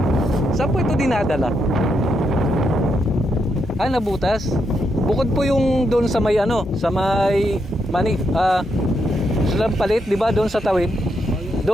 Saan po ito dinadala? Nabutas. Bukod po yung doon sa may sa may palit, di ba? Doon sa tawid.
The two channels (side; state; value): both; normal; correlation 0.80